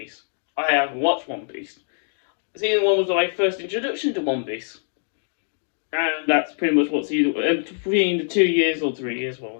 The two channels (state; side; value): silent; right; digital silence